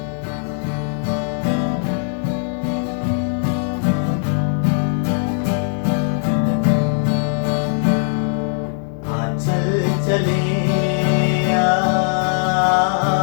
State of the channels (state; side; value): silent; right; 62 dB below the other